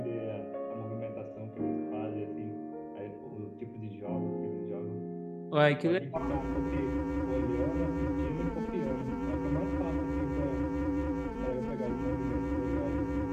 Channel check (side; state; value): both; identical; correlation 1.00